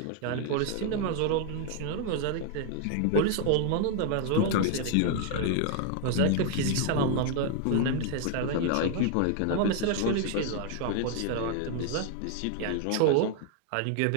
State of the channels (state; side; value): different; both; correlation 0.00